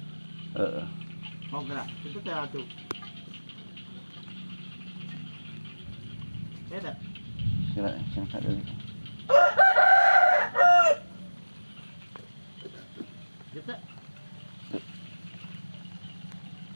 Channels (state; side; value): inverted; both; correlation -1.00